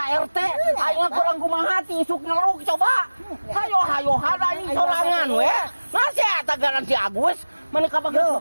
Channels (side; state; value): both; inverted; correlation -1.00